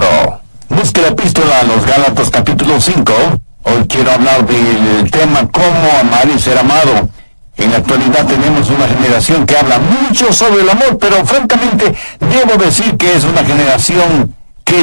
Busque la epístola a los Gálatas, capítulo 5. Hoy quiero hablar del tema Cómo amar y ser amado. En la actualidad tenemos una generación que habla mucho sobre el amor, pero francamente debo decir que es una generación que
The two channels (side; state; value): both; inverted; correlation -1.00